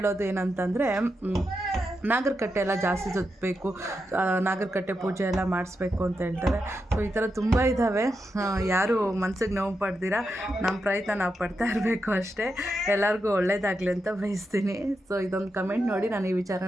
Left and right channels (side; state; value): both; normal; correlation 0.86